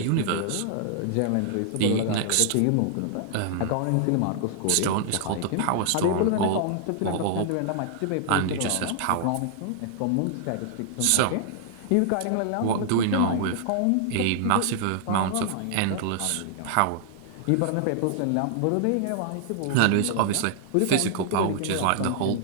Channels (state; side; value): different; both; correlation -0.01